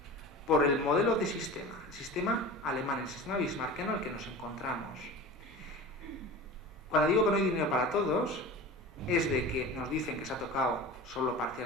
Por el modelo de sistema, el sistema alemán, el sistema bismarckiano al que nos encontramos. Cuando digo que no hay dinero para todos, es de que nos dicen que se ha tocado solo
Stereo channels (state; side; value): normal; both; correlation 0.35